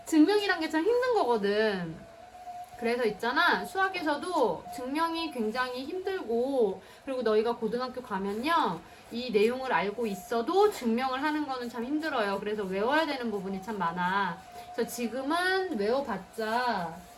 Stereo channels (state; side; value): identical; both; correlation 1.00